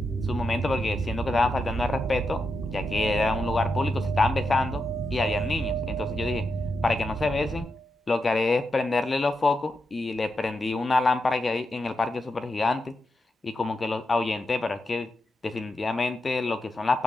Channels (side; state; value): both; normal; correlation 0.86